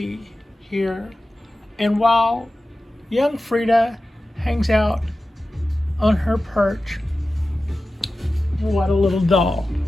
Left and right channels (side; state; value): both; normal; correlation 0.94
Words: here. And while young Frida hangs out on her perch, what a little doll.